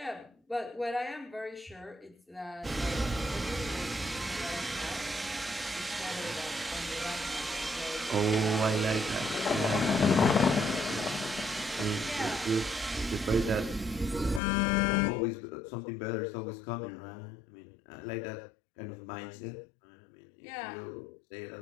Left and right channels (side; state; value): right; drops out; at 14.4 s